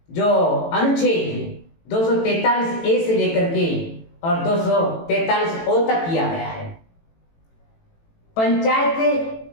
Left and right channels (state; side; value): late; right; 18 ms